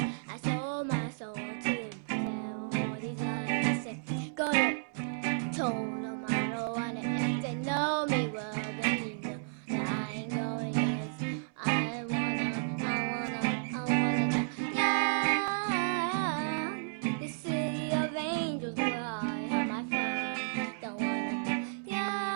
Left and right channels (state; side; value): silent; left; 56 dB below the other